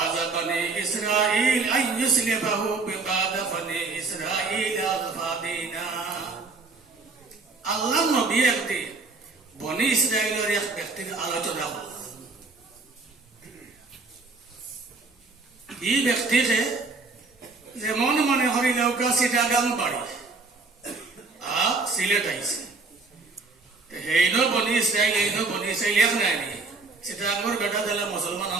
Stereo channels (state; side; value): quieter; left; 4.0 dB